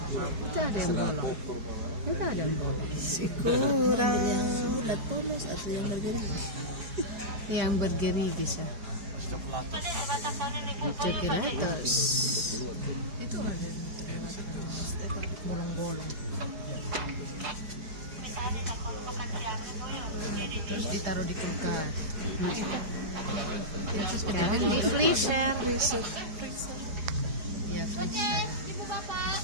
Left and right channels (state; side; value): late; left; 4.9 ms